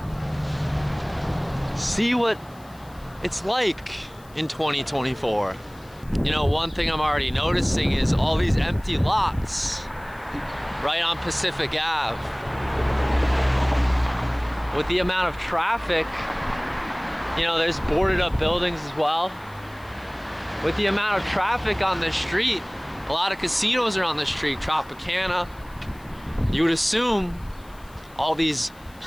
See what it's like in 2024. You know, one thing I'm already noticing is all these empty lots right on Pacific Ave. With the amount of traffic, you know, there's boarded up buildings as well. With the amount of traffic on the street, a lot of casinos are on the street, Tropicana. You would assume all these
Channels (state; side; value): noise; left; hiss, 27 dB below the sound